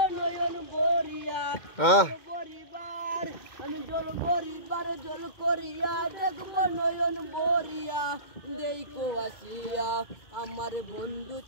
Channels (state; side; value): late; right; 2.1 ms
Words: নয়ন বরিয়া, পরিবার আমি জল পরিবার জল করিয়া দেখব নয়ন বরিয়া, দেখো আসিয়া আমার বন্ধু